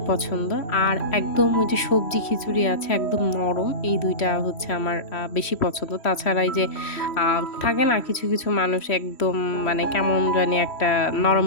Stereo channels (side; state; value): right; late; 3.1 ms